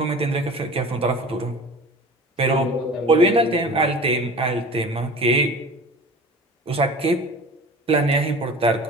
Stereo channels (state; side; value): normal; both; correlation 0.40